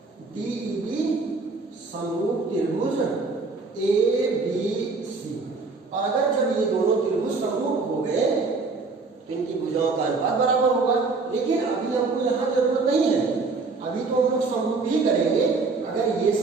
DEB समरूप त्रिभुज ABC। और अगर जब ये दोनों त्रिभुज समरूप हो गए तो इनकी भुजाओं का अनुपात बराबर होगा। लेकिन अभी हमको यहाँ जरूरत नहीं है, अभी तो हम लोग समरूप ही करेंगे। अगर ये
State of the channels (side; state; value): left; quieter; 4.1 dB